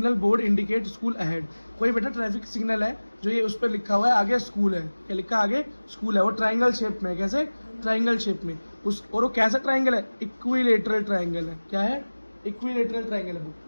board indicate school ahead. कोई बेटा ट्रैफिक सिग्नल है जो ये उस पर लिखा हुआ है आगे स्कूल है, क्या लिखा है आगे स्कूल है, वो ट्राइंगल शेप में है। कैसे? ट्राइंगल शेप में। उस और वो कैसा ट्राइंगल है? इक्विलेटरल ट्राइंगल है। क्या है? इक्विलेटरल ट्राइंगल है।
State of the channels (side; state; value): both; inverted; correlation -1.00